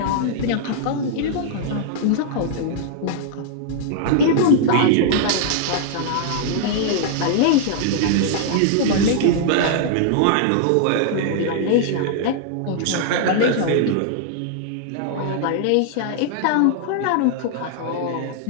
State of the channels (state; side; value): different; both; correlation -0.01